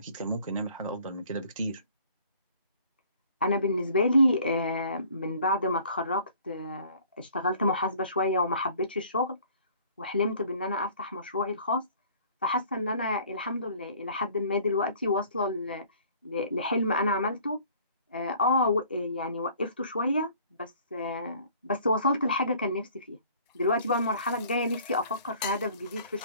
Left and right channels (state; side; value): inverted; both; correlation -0.54